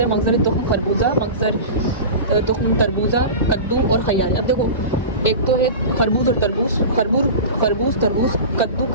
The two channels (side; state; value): both; inverted; correlation -0.30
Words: हैं। मगज़र तुख्म खरबूजा, मगज़र तुख्म तरबूजा, कद्दू और खयार। अब देखो एक तो है खरबूज और तरबूज, खरबूज तरबूज, कद्दू